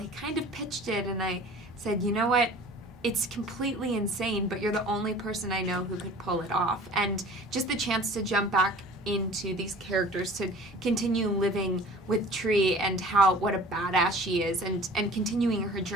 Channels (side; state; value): both; normal; correlation 0.45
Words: kind of pitched it, and I said, you know what? It's completely insane, but you're the only person I know who could pull it off. And just the chance to jump back into these characters, to continue living with Tree and what a badass she is, and continuing her